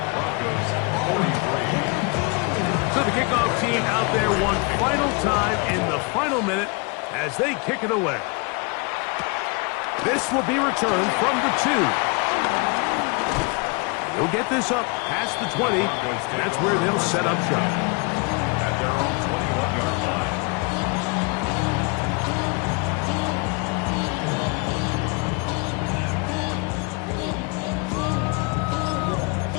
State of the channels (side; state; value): right; quieter; 30.8 dB